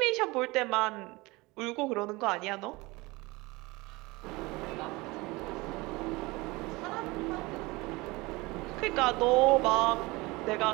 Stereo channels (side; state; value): left; quieter; 22.9 dB